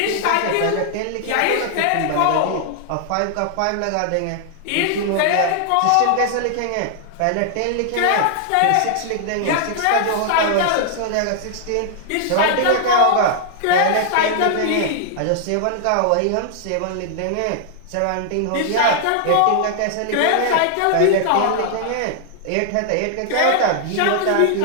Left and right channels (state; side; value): different; both; correlation 0.00